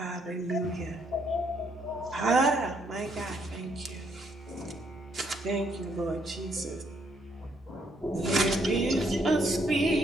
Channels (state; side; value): normal; both; correlation 0.71